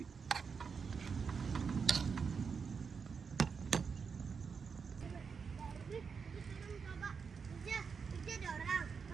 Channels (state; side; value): quieter; left; 5.8 dB